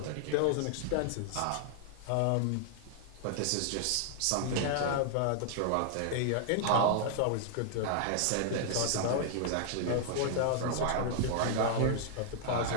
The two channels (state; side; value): different; both; correlation 0.00